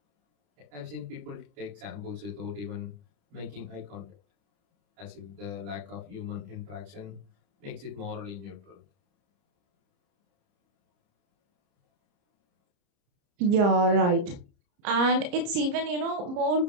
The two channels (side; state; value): left; late; 30 ms